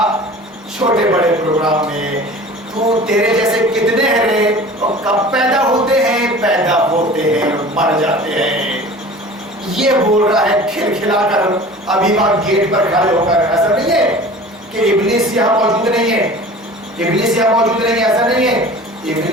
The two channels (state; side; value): normal; both; correlation 0.41